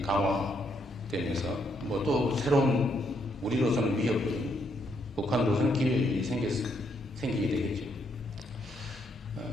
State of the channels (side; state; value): both; normal; correlation 0.75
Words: 강화되면서 뭐 또 새로운 우리로서는 위협이, 북한으로서는 기회가 생기게 되겠죠.